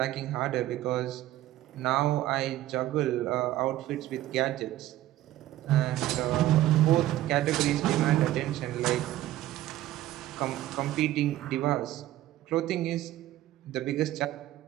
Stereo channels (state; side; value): quieter; left; 14.5 dB